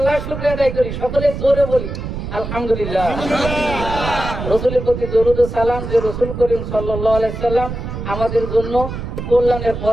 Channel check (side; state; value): right; noise; rumble, 6 dB below the sound